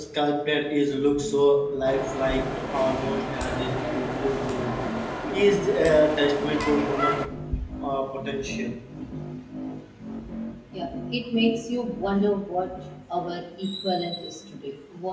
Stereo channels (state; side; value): identical; both; correlation 1.00